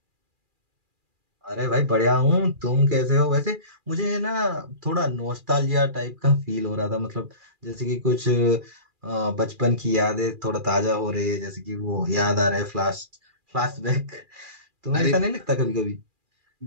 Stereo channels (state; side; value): late; left; 2.4 ms